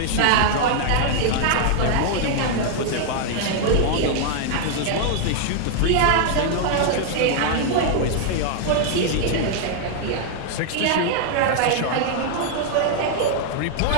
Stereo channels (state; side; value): different; both; correlation 0.00